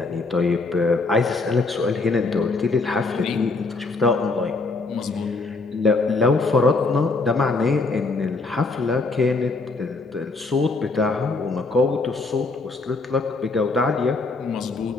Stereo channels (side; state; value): right; quieter; 3.7 dB